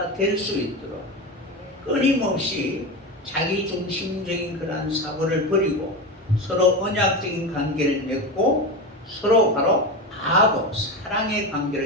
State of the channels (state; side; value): normal; both; correlation 0.21